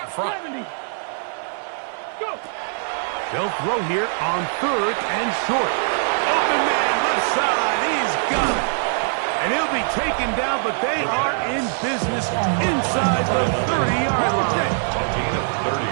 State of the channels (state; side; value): silent; left; 59 dB below the other